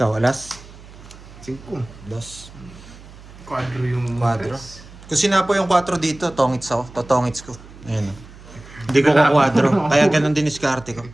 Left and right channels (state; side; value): noise; right; hum, 19 dB below the sound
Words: alas? 5. Dos. Quadro yung Quadro. tres. Kung sinapo yung 4 dito, tongits ako. Totongits ko. Ayan o. Hindi ko kukwadro. Kaya ganun din diskarte ko.